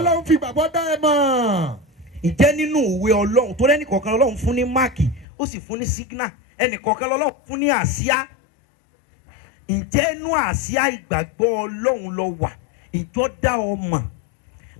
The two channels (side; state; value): right; drops out; at 5.2 s